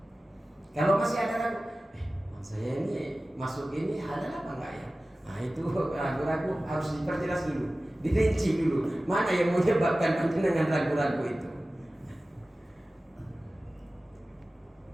Kalau masih ada ragu, saya ini masuk ini halal apa enggak ya? Nah itu ragu-ragu harus diperjelas dulu, dirinci dulu. Mana yang menyebabkan panjenengan ragu-ragu itu?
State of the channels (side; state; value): both; normal; correlation 0.96